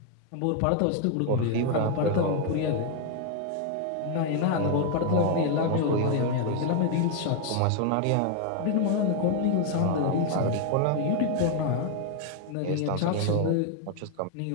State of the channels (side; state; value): both; different; correlation 0.01